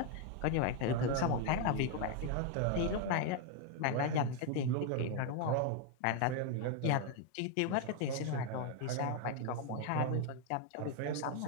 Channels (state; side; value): different; both; correlation 0.01